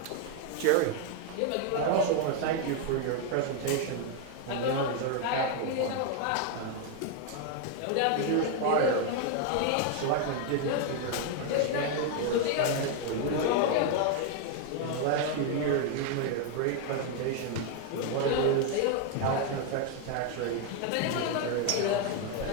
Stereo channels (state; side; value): different; both; correlation 0.01